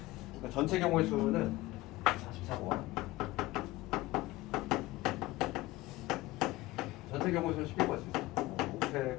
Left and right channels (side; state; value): right; quieter; 19.0 dB